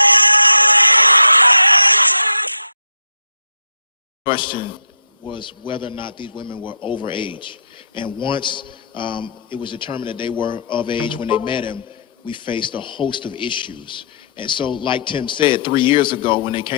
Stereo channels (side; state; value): both; inverted; correlation -0.68